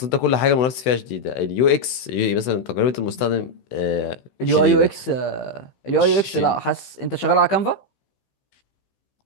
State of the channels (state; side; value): late; right; 16 ms